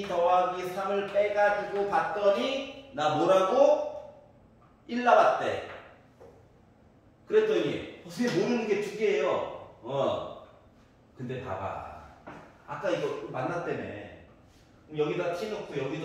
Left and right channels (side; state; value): both; identical; correlation 1.00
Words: 더하기 3을 빼가지고 봤더니 나 뭐라고? 1 나왔대. 그랬더니 선생님 모르는 게 두 개예요. 근데 봐봐. 아까 이거 만났다며. 여기다 t 넣고